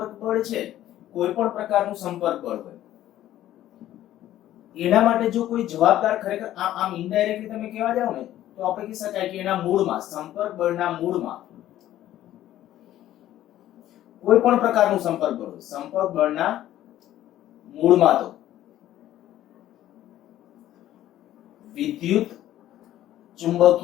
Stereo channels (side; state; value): right; quieter; 13.2 dB